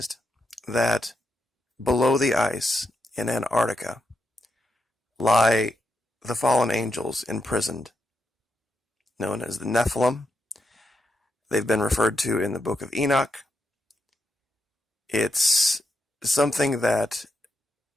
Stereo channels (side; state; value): both; normal; correlation 0.84